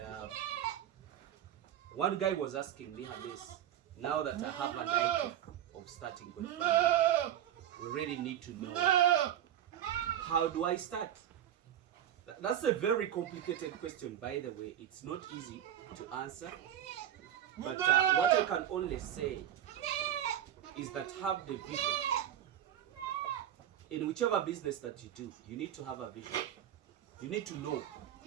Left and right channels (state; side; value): quieter; left; 10.9 dB